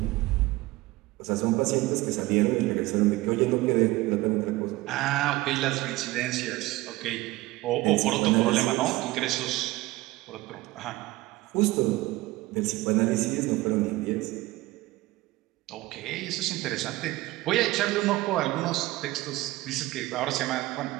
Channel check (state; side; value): quieter; left; 19.2 dB